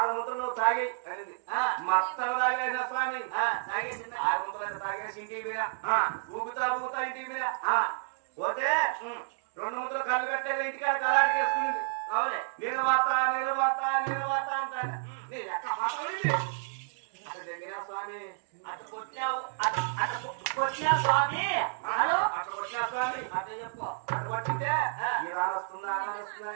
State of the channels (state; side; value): silent; left; digital silence